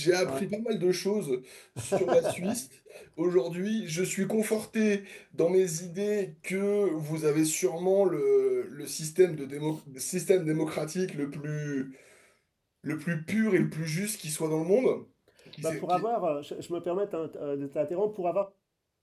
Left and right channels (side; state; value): both; identical; correlation 1.00